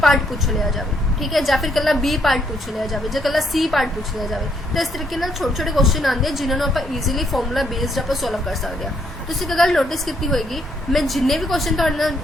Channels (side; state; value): both; normal; correlation 0.72